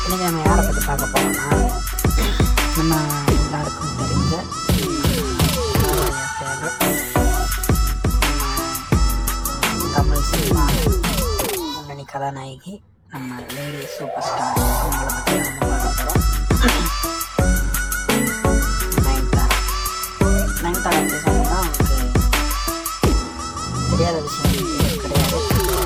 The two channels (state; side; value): identical; both; correlation 1.00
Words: இன்றைக்கி நம்ம யாரை பற்றி பார்க்க போகிறோம்னா, நம்ம எல்லாருக்கும் தெரிஞ்ச தமிழ் சினிமா முன்னணி கதாநாயகி, நம்ம லேடி சூப்பர் ஸ்டார், அவங்கள பற்றி நம்ம பார்க்க போகிறோம். நயன்தாரா பற்றி சொன்னோம்னா அவங்களுக்கு தெரியாத விஷயம் கிடையாது.